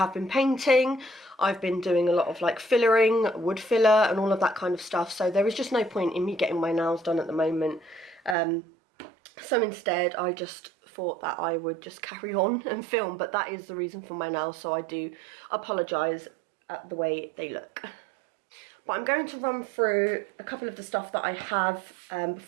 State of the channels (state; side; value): drops out; left; at 8.3 s